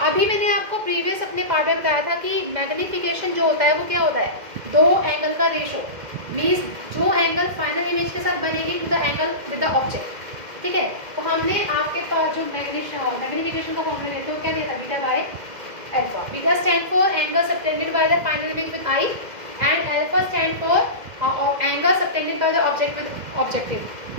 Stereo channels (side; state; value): left; late; 2.1 ms